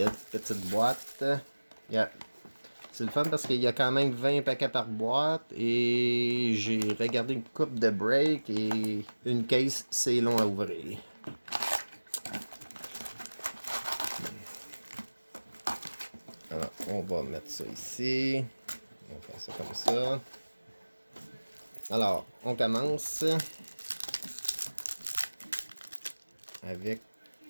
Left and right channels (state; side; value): inverted; both; correlation -1.00